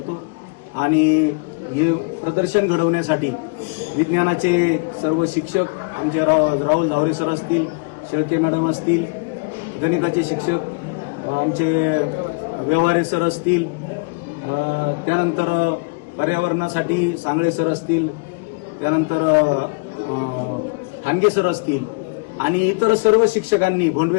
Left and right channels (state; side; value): quieter; right; 32.4 dB